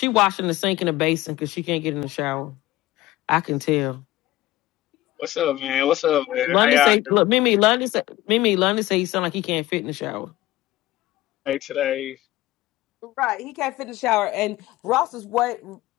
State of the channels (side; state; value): right; quieter; 16.5 dB